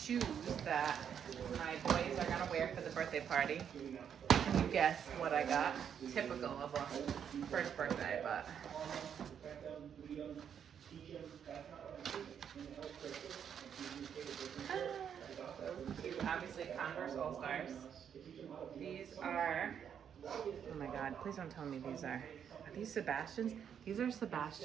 that my boys are gonna wear for the birthday party. You guess what I got? Typical of a first birthday, but obviously Converse All-Stars. These are, oh my God, please don't tell me these are these Sebastians? These are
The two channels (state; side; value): quieter; left; 8.2 dB